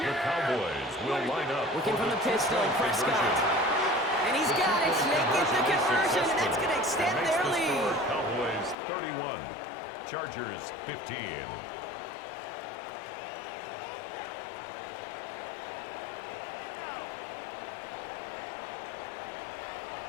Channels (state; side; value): drops out; right; at 8.8 s